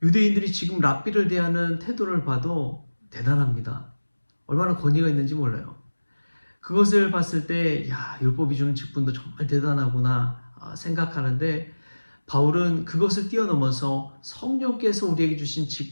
유대인들이 지금 랍비를 대하는 태도를 봐도 대단합니다. 얼마나 권위가 있는지 몰라요. 그것을 봤을 때 율법이 주는 직분도 정말 대단하구나 생각하는데 바울은 그것을 뛰어넘어서 성령께서 우리에게 주신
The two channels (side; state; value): both; inverted; correlation -1.00